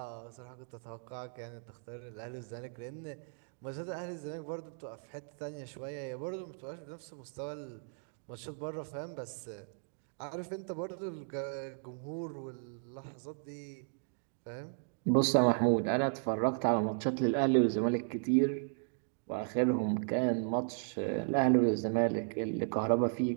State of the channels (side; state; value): left; silent; digital silence